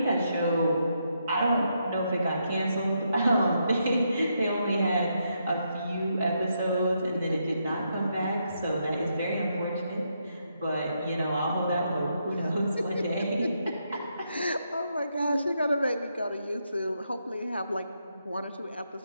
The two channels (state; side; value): inverted; both; correlation -0.79